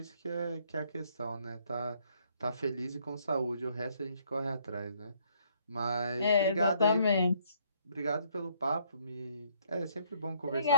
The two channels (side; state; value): both; inverted; correlation -0.65